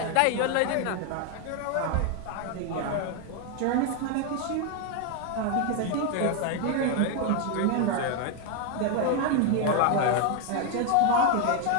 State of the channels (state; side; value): different; both; correlation 0.01